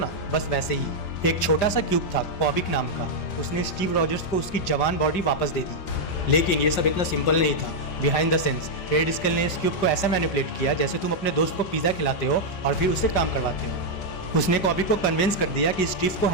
बस वैसे ही एक छोटा सा क्यूब था कॉबिक नाम का। उसने स्टीव रॉजर्स को उसकी जवान बॉडी वापस दे दी। लेकिन ये सब इतना सिंपल नहीं था। Behind the sense red scale ने इस क्यूब को ऐसा मैनिपुलेट किया जैसे तुम अपने दोस्त को पिज़्ज़ा खिलाते हो और फिर उससे काम करवाते हो। उसने कॉबिक को कन्विंस कर दिया कि स्टीव को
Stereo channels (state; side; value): late; right; 5.4 ms